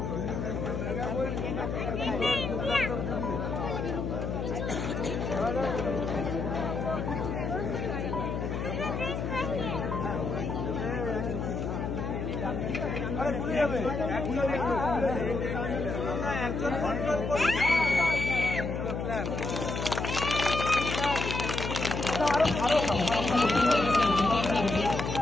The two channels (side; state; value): left; noise; hum, 3 dB below the sound